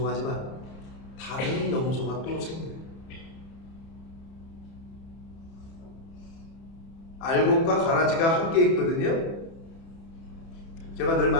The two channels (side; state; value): right; late; 30 ms